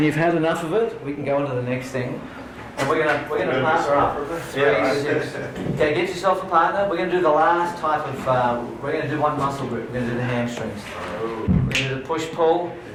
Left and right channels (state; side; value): identical; both; correlation 1.00